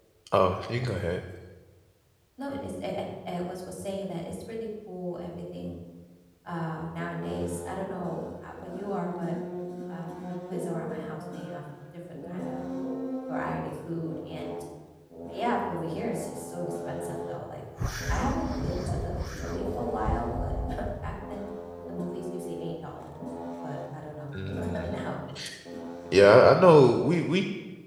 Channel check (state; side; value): identical; both; correlation 1.00